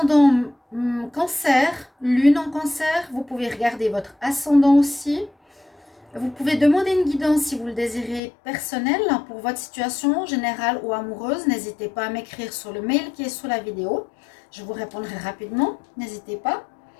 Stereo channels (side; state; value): right; drops out; at 8.2 s